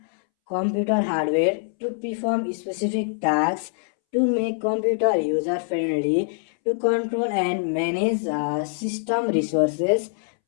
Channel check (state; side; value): silent; right; 63 dB below the other